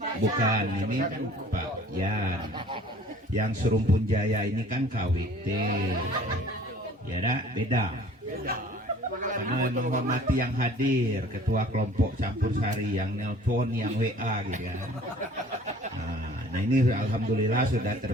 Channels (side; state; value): both; normal; correlation 0.51